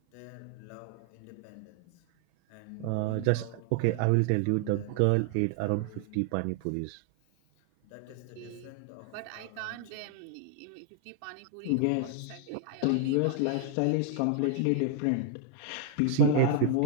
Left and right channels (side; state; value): both; different; correlation 0.00